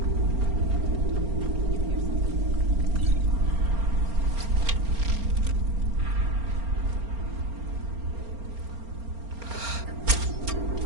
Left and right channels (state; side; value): late; left; 4.3 ms